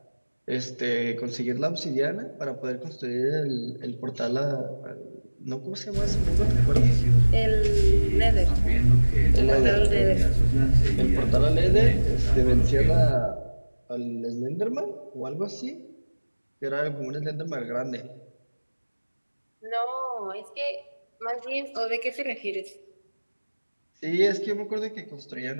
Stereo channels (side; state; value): both; inverted; correlation -1.00